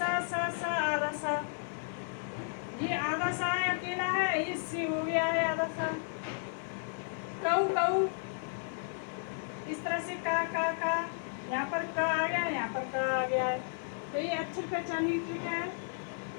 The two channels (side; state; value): right; silent; 55 dB below the other